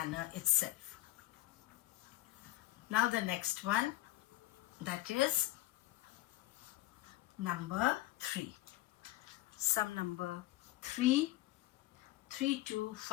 itself. Now the next one, that is number 3. Sum number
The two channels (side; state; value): right; quieter; 17.0 dB